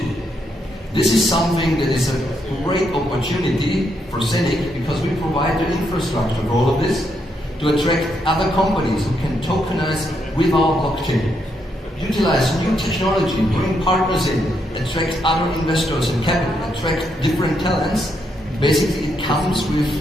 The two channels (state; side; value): normal; both; correlation 0.78